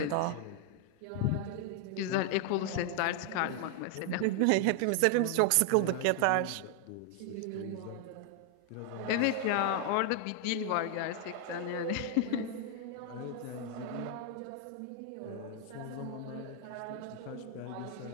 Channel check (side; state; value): both; different; correlation 0.00